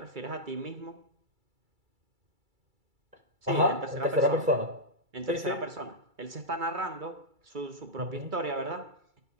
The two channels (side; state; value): left; late; 2.3 ms